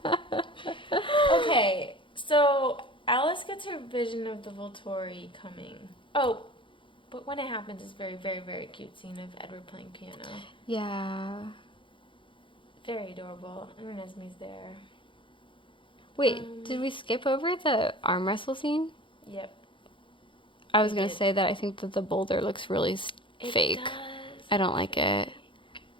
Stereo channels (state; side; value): late; right; 0.24 ms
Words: Okay, so Alice gets her vision of the Volturi coming. Oh, but when it happens, it's very, very, very cute scene of Edward playing piano. Yeah. Very adorable. And Renesmee's there. Wait, did we skip over the arm wrestle scene? Yep. I was going to say that I think that the boulder looks really fake. Does. I don't like it.